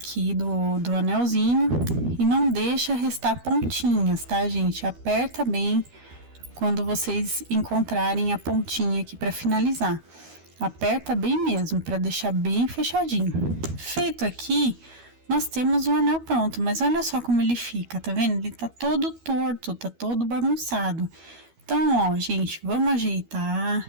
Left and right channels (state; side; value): late; left; 12 ms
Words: do anelzinho e não deixa restar pontinhas, tá, gente? Aperta bem quando vocês encontrarem a pontinha aqui para finalizar. Aperta bem mesmo, para deixar bem fechadinho. Feito aqui, nós temos o anel pronto, mas olha só como ele fica, tá vendo? Ele tá todo torto, tá todo bagunçado. Então, ó, gente, vamos